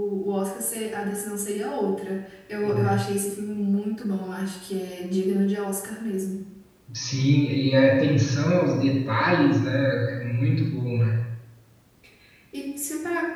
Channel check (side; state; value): both; identical; correlation 1.00